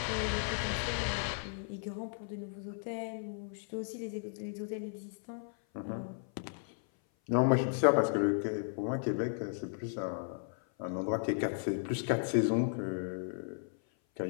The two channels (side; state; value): right; silent; 54 dB below the other